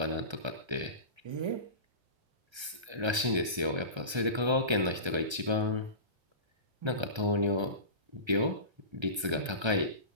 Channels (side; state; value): left; late; 1.3 ms